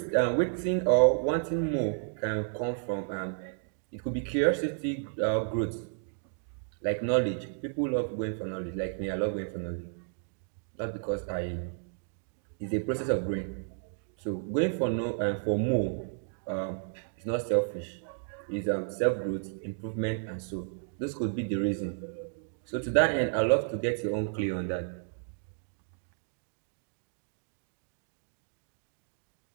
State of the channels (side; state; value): left; silent; digital silence